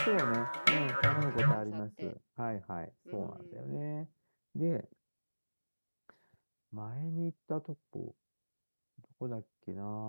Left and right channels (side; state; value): both; inverted; correlation -1.00